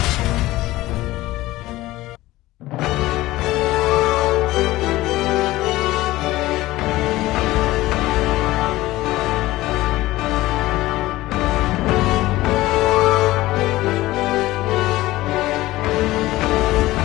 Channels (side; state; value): right; quieter; 17.6 dB